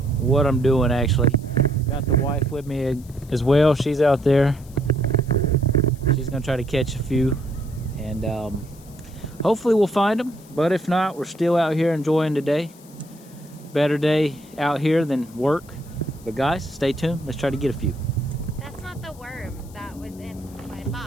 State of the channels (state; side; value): noise; left; hiss, 24 dB below the sound